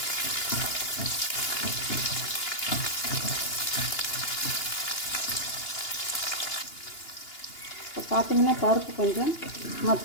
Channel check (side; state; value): right; late; 2.8 ms